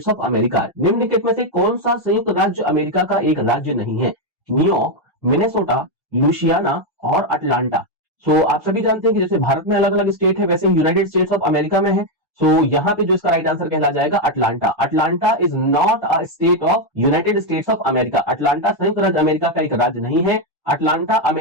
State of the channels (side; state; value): both; normal; correlation 0.04